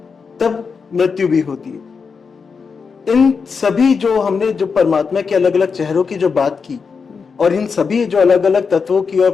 तब मृत्यु भी होती है। इन सभी जो हमने जो परमात्मा के अलग अलग चेहरों की जो बात की, और इन सभी जो अलग अलग तत्वों की और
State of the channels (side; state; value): right; quieter; 5.4 dB